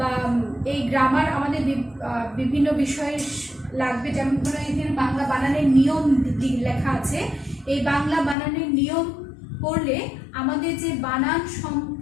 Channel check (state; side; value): drops out; right; at 8.3 s